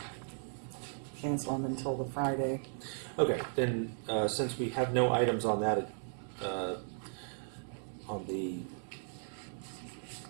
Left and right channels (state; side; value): silent; left; digital silence